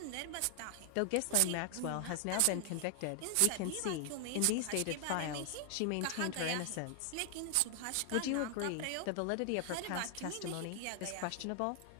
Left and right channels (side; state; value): both; different; correlation 0.00